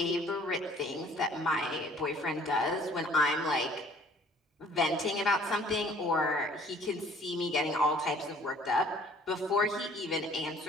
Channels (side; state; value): both; normal; correlation 0.55